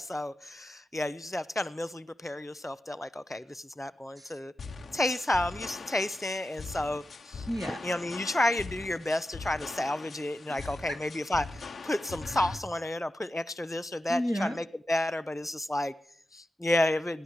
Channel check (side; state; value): both; normal; correlation 0.90